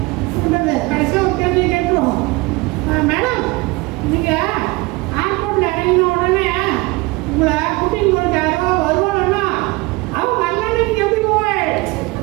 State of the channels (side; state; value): left; quieter; 23.7 dB